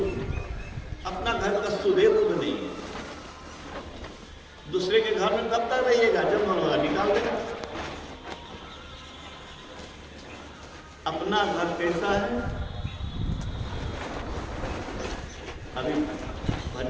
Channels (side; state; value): both; identical; correlation 1.00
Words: अपना घर का सुधे बुध नहीं है। दूसरे के घर में कब तक रहिएगा, जब मन होगा निकाल देगा। अपना घर कैसा है, अभी